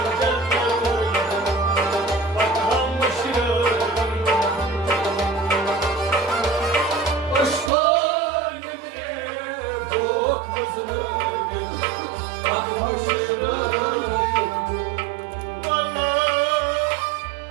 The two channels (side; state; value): left; drops out; at 7.7 s